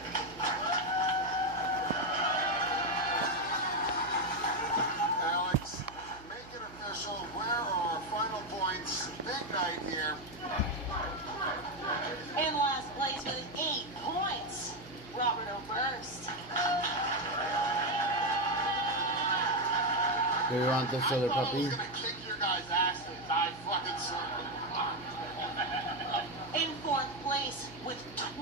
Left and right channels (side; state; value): right; noise; hum, 19 dB below the sound